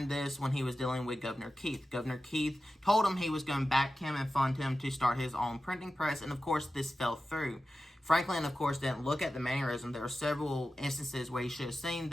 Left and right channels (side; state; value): both; normal; correlation 0.93